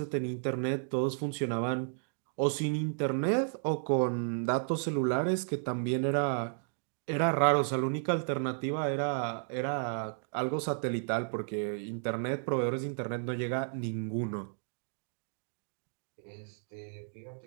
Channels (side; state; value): left; silent; digital silence